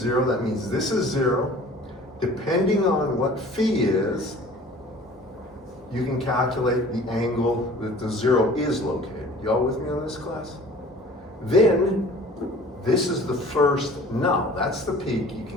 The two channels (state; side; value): normal; both; correlation 0.47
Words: That means this is 0. Depending on what phi is, you can calculate the angle that the 0 is located. Y'all with me on this, class? Then, this is the first null. That's the peak you